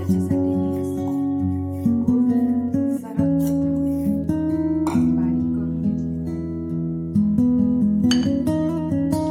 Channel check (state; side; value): identical; both; correlation 1.00